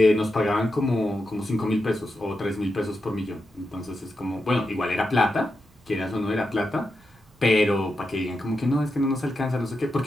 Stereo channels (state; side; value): normal; both; correlation 0.88